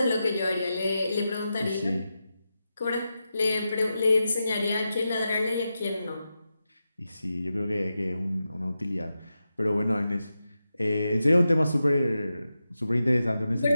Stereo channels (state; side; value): inverted; both; correlation -0.90